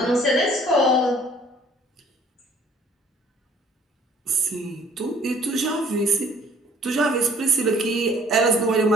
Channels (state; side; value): normal; both; correlation 0.57